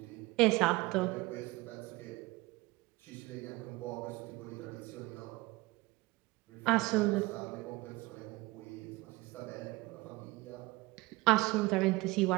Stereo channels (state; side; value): quieter; left; 21.6 dB